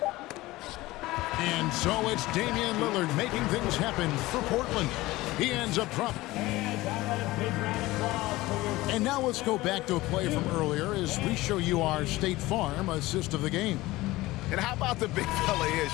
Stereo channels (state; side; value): quieter; right; 18.9 dB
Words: And so it's Damian Lillard making things happen for Portland. He ends up dropping. And now let's go back to a play from earlier as we show you our State Farm assist of the game. And how about the big fella here